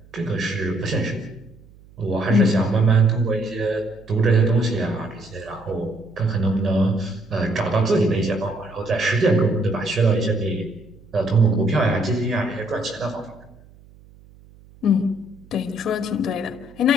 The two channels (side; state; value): right; noise; hum, 25 dB below the sound